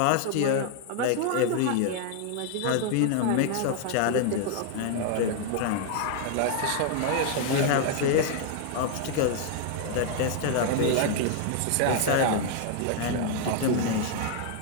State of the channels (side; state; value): both; different; correlation 0.00